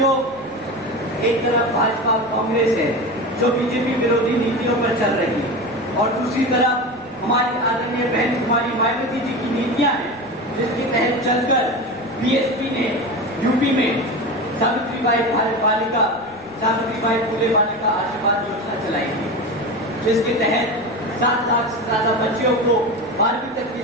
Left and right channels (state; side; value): noise; left; rumble, 28 dB below the sound